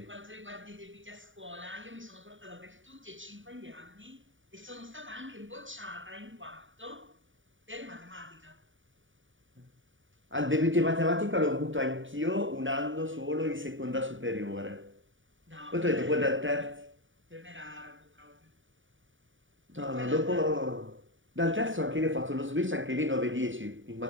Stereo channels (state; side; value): late; left; 0.57 ms